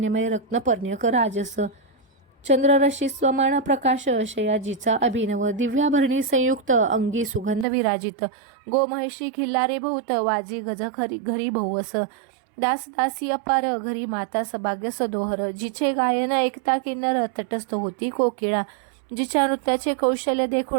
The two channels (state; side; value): drops out; left; at 7.7 s